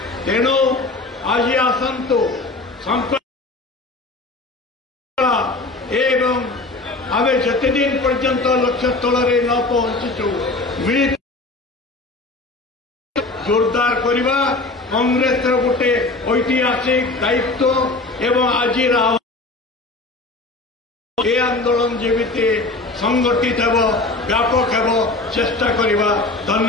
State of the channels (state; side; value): quieter; right; 3.2 dB